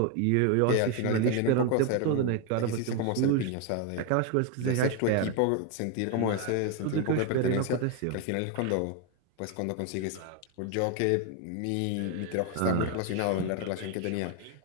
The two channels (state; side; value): different; both; correlation 0.01